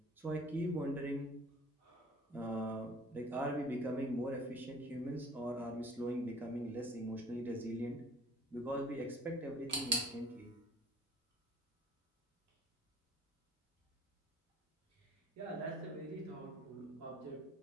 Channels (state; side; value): normal; both; correlation 0.51